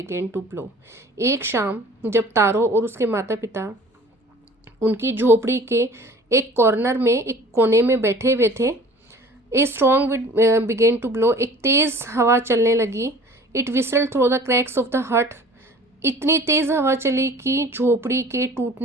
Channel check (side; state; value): both; normal; correlation 0.47